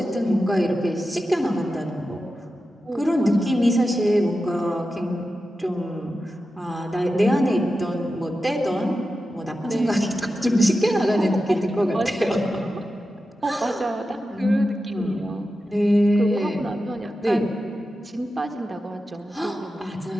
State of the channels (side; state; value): both; normal; correlation 0.91